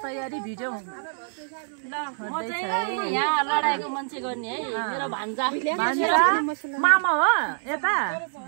तयारी भिडियो यहाँ लडाइको मान्छे गर्ने है मेरो भान्जा मामा हो यता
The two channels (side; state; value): left; silent; digital silence